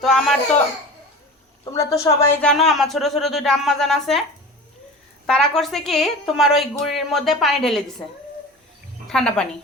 তো তোমরা তো সবাই জানো আমার ছোট ছোট দুইটা আম্মাজান আছে। তারা করছে কি, তোমার ওই গুড়ির মধ্যে পানি ঢেলে দিছে, ঠান্ডা পানি,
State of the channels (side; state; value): both; normal; correlation 0.35